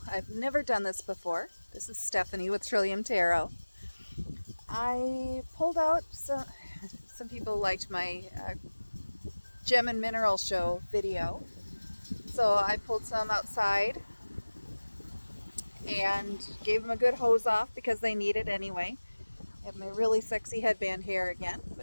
I've never done this before. This is Stephanie with Trillium Tarot. I pulled out some people liked my gem and mineral show video. So I pulled some outside and gave them a good hose off because they need it anyway. I have my really sexy headband hair again,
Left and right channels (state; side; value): inverted; both; correlation -1.00